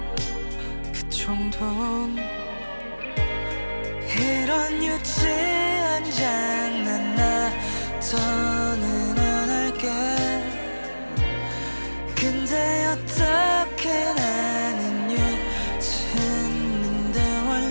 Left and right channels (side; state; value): both; inverted; correlation -1.00